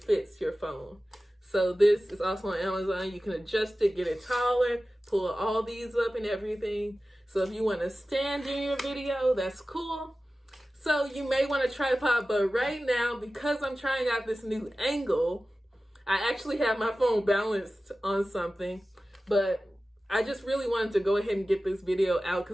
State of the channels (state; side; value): normal; both; correlation 0.95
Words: your phone. So this is also on Amazon. You can adjust it, get it taller, pull all these up and everything. So if you want to stand in your video, that's cool. So you may want a tripod, but right now, because I'm trying out this new angle, I actually have my phone balanced on something, but I just really wanted to go ahead and get this video out